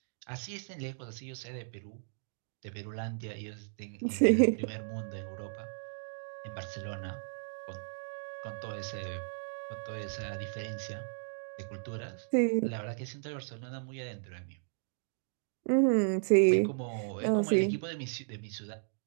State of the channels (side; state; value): left; silent; digital silence